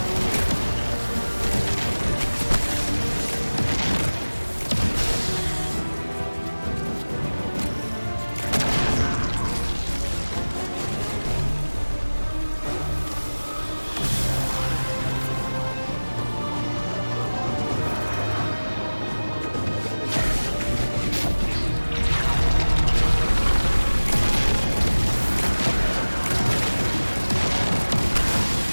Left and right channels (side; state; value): both; inverted; correlation -1.00